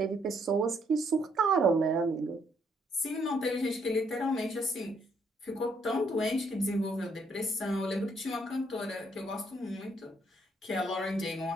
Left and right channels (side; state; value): both; normal; correlation 0.70